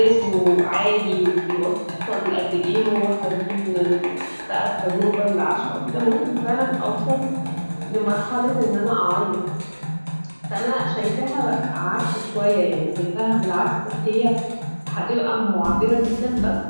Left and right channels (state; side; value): inverted; both; correlation -1.00